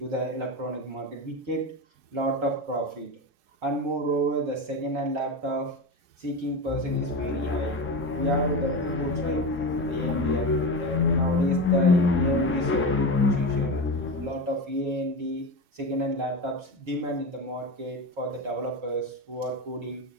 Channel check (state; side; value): late; left; 4.8 ms